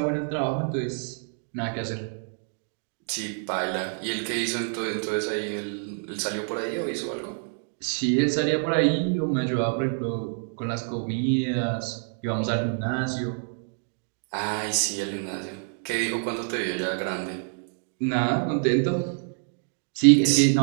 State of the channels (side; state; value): left; silent; 60 dB below the other